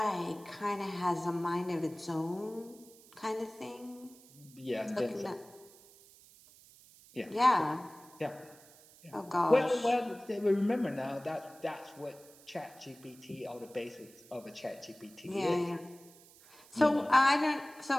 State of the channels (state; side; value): noise; right; hiss, 23 dB below the sound